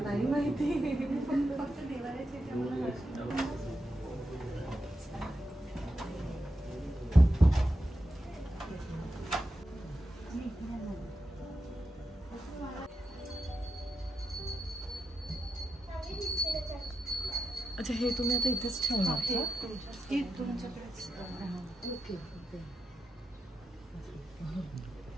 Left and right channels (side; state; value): both; normal; correlation 0.88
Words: नाही माहिती. फक्त देवाऱ्याचे अच्छा हे तुम्ही आता इथेच ठेवणार का? तुमच्याकडेच. Okay okay.